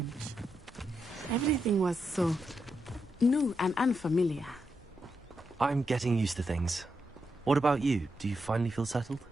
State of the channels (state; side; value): normal; both; correlation 0.84